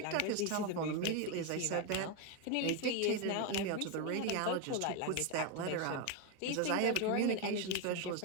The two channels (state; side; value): different; both; correlation 0.02